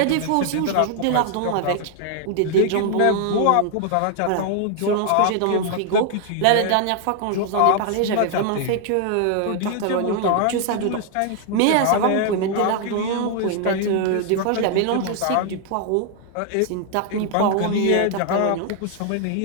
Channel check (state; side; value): different; both; correlation 0.00